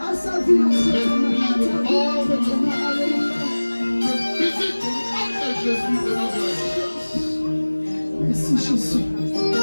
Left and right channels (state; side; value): inverted; both; correlation -1.00